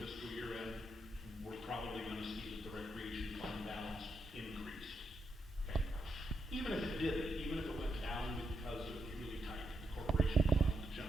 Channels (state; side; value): normal; both; correlation 0.82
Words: fiscal year end, we're probably gonna see that the recreation fund balance increased. Okay. Even if it didn't, even if it went down because it was really tight, the corporation fund, the